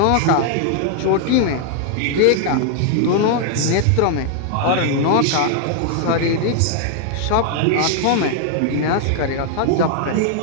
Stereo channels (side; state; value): both; different; correlation 0.00